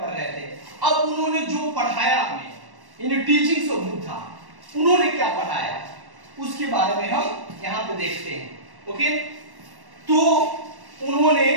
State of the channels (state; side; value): late; left; 1.1 ms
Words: रहे थे। अब उन्होंने जो पढ़ाया हमें, इन टीचिंग्स ऑफ बुद्धा, उन्होंने क्या पढ़ाया उसके बारे में हम यहाँ पे देखते हैं। ओके, तो उन्होंने